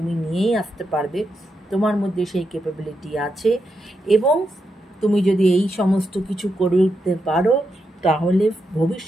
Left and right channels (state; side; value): normal; both; correlation 0.84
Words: নিয়েই আসতে পারবে। তোমার মধ্যে সেই ক্যাপাবিলিটি আছে এবং তুমি যদি এই সমস্ত কিছু করে উঠতে পারো তাহলে